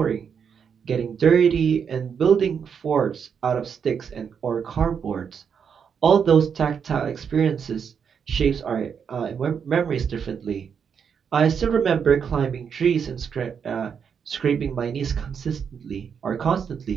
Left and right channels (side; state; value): left; quieter; 7.0 dB